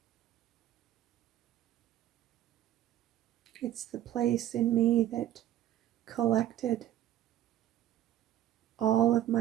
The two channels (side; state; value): left; quieter; 12.3 dB